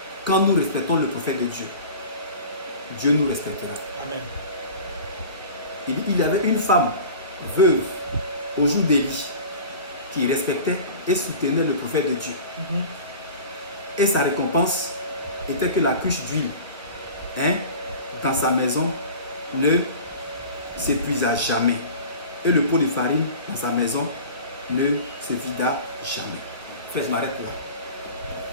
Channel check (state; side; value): inverted; both; correlation -0.38